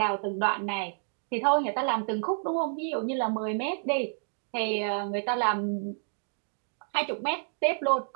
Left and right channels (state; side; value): silent; left; digital silence